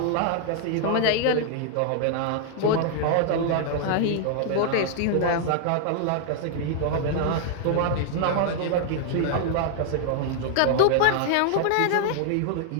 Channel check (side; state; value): both; different; correlation 0.00